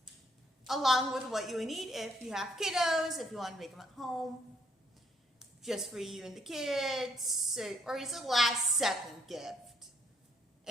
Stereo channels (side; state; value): both; normal; correlation 0.69